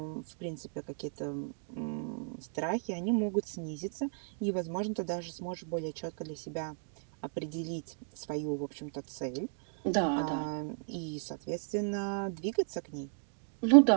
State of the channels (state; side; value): silent; left; digital silence